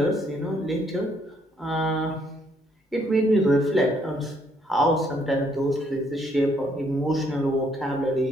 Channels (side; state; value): both; normal; correlation 0.69